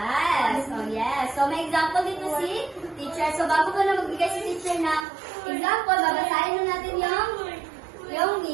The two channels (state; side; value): drops out; left; at 5.1 s